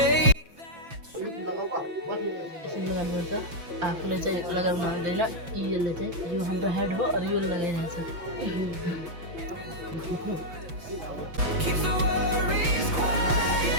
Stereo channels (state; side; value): late; left; 5.9 ms